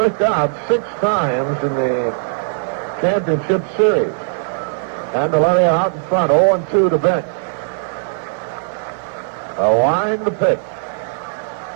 out 6 times in the championship series. Candeleria out in front, 0-2 to Bench. A wind to pitch.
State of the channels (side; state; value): left; silent; digital silence